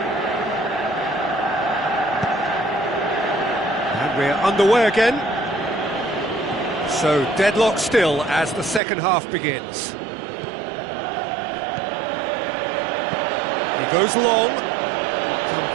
And we're underway again. So deadlock still as the second half begins. He goes long.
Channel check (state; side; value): drops out; left; at 8.8 s